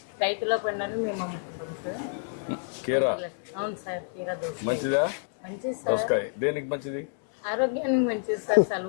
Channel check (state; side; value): silent; right; digital silence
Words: రైతుల పండుగను మేము అమ్ముకుంటాం సార్. కీరా అవును సార్, కీరా దోస మంచిదా? మంచిది సార్. దోసకాయ దేనికి మంచిది? ఆరోగ్యానికి మంచిది సార్.